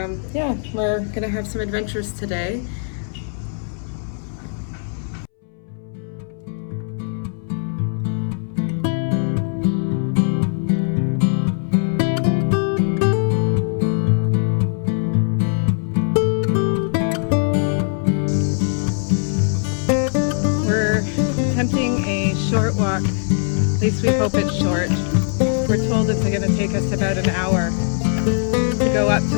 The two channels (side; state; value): right; silent; 65 dB below the other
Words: yeah, we're gonna have some adventures today. Attempting a short walk, at least we hope it's short. We're told it's going to take us about an hour to go up to